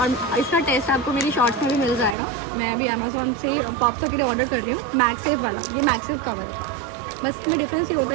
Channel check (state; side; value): drops out; left; at 2.1 s